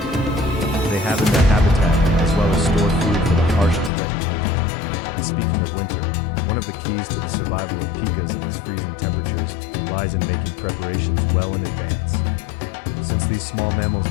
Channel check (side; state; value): right; drops out; at 3.9 s